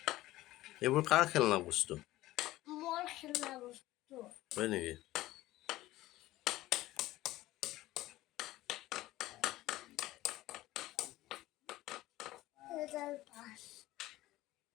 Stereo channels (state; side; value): quieter; right; 16.7 dB